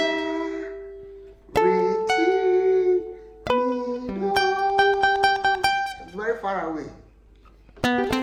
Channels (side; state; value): both; identical; correlation 1.00